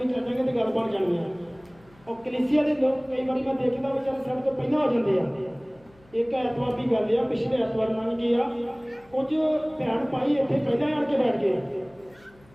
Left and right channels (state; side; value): noise; left; hum, 28 dB below the sound